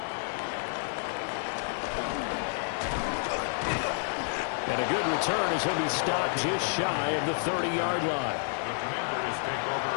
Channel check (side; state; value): right; silent; digital silence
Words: And a good return as he'll be stopped just shy of the 30-yard line. The Commanders take